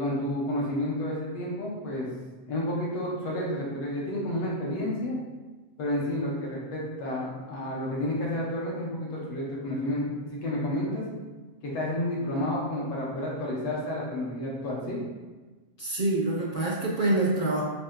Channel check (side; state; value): right; late; 7.3 ms